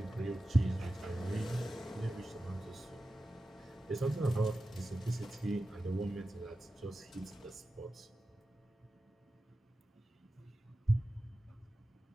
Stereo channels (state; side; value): normal; both; correlation 0.93